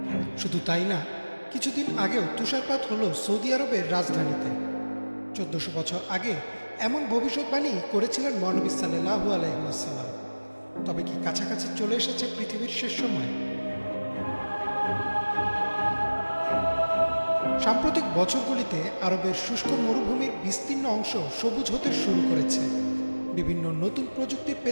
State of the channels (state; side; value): inverted; both; correlation -1.00